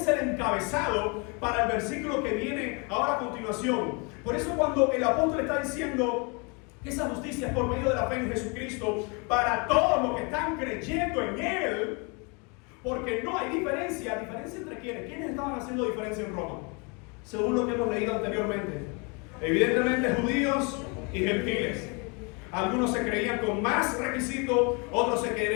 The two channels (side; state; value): right; quieter; 32.1 dB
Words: el encabezado para el versículo que viene ahora a continuación. Por eso cuando el apóstol está diciendo que esa justicia es por medio de la fe en Jesucristo para todos los que están creyendo en Él, porque no hay diferencia. ¿Diferencia entre quiénes? ¿Quiénes estaban haciendo diferencia en Roma? Según lo que hemos leído anteriormente. Evidentemente judíos y gentiles. Algunos se creían con más requisitos, otros se